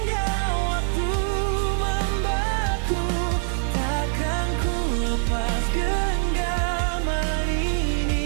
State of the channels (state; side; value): silent; left; digital silence